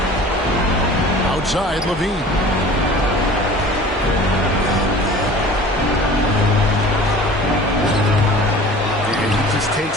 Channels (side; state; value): both; normal; correlation 0.43